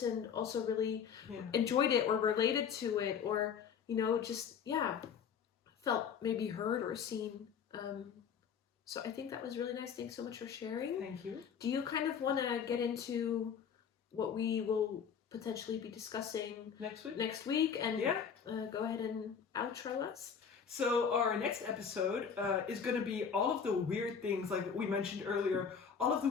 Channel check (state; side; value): quieter; right; 7.0 dB